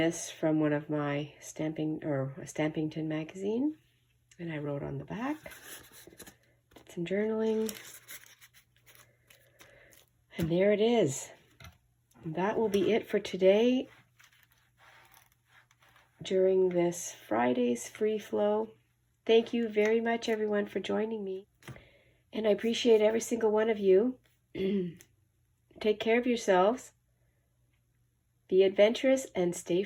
from one of my stamping, or a Stampington magazine, and I wrote on the back. Did some journaling. And there it is. That will be it for today during this Friday's free flow. Thank you very much, everyone, for joining me. And I appreciate every single one of you. Take care of yourselves. Be adventurous and stay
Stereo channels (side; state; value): both; identical; correlation 1.00